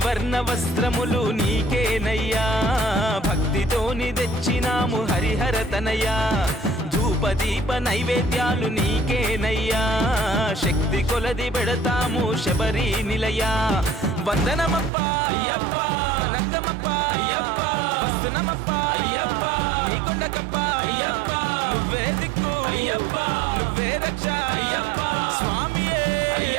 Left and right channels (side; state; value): left; drops out; at 14.9 s